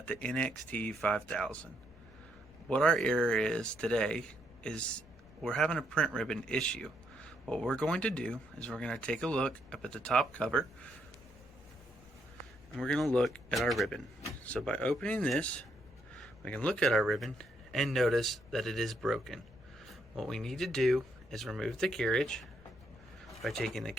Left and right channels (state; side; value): noise; left; rumble, 23 dB below the sound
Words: the NXT5000. What our error is today is we're having a print ribbon issue. What we're going to do is we're going to take a look up at the top cover and we're going to look at our ribbon. So by opening this, we can look at our ribbon and notice that it is broken. What we need to do is remove the carriage. By taking the